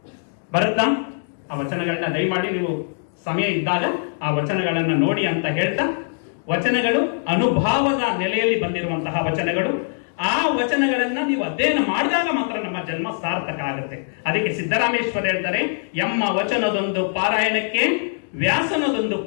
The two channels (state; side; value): silent; right; digital silence